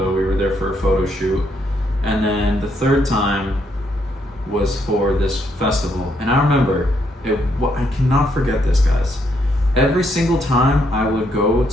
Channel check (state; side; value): normal; both; correlation 0.74